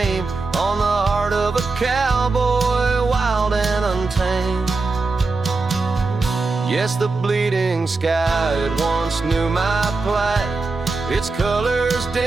on the heart of a cowboy, wild and untamed. Yes, the bleeding sky, it once knew my plight. Its colors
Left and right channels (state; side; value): quieter; left; 3.8 dB